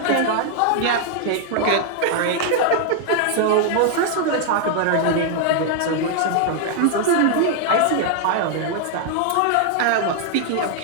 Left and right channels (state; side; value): different; both; correlation 0.00